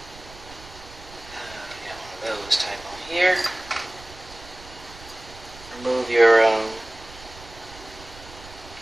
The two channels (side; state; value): right; noise; rumble, 18 dB below the sound